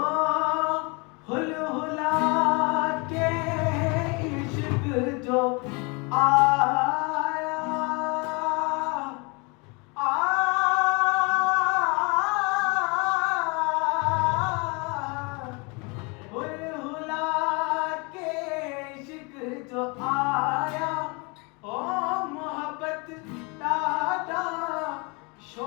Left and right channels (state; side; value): quieter; right; 29.9 dB